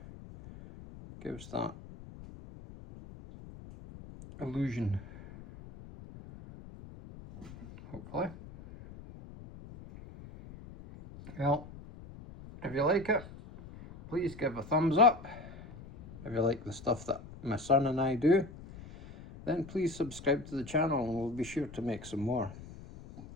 gives that illusion, hopefully. Well, if you like it, please give a thumbs up. If you like the stuff that my son and I do, then please subscribe to the channel and we'll be sure to make some more.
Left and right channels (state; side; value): noise; left; rumble, 16 dB below the sound